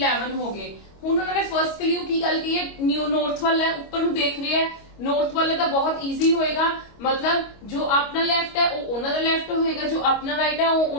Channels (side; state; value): right; late; 25 ms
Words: हो गए। ਹੁਣ ਉਹਨਾਂ ਨੇ ਫਰਸਟ ਕਲਿਊ ਕੀ ਗੱਲ ਕੀ ਹੈ, ਨਿਊ ਨॉर्थ वाला है, ऊपर ਨੂੰ देख रहे हैं, नॉर्थ वाले ਤਾਂ बहुत इजी होएगा। मतलब जो अपना लेफ्ट है वो ਉਹਨਾਂ ਦਾ लेफ्ट होएगा, जो अपना राइट है वो